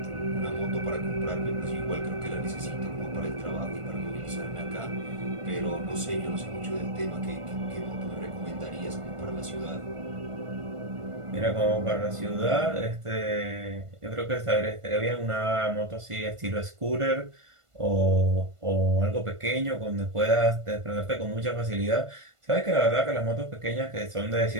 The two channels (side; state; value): left; late; 1.5 ms